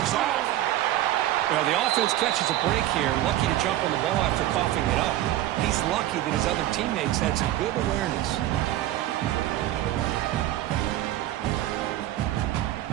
off. Well, the offense catches a break here, lucky to jump on the ball after coughing it up. He's lucky that his other teammates had some good awareness.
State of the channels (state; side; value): quieter; left; 14.1 dB